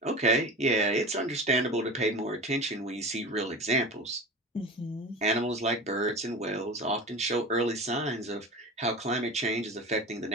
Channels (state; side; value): normal; both; correlation 0.31